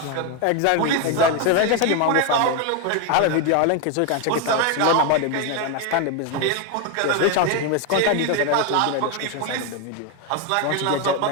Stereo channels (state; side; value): different; both; correlation 0.02